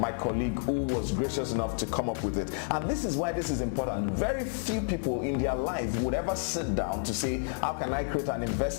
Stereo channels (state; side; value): silent; right; digital silence